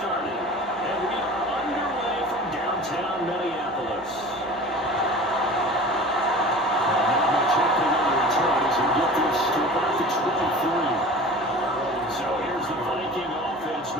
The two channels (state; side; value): normal; both; correlation 0.39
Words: And we are underway from downtown Minneapolis. Not much happening on the return as we get this to about the 23. So here's the Viking offense